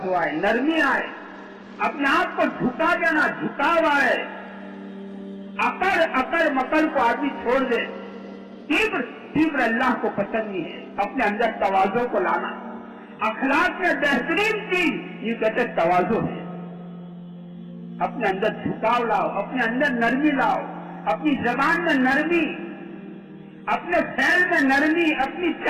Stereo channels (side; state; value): both; identical; correlation 1.00